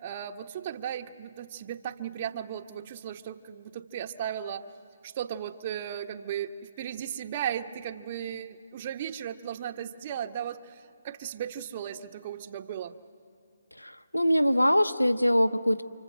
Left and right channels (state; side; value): inverted; both; correlation -0.88